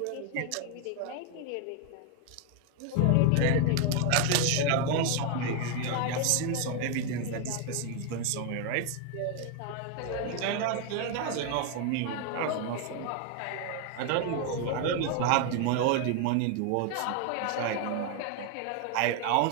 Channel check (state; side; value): different; both; correlation 0.01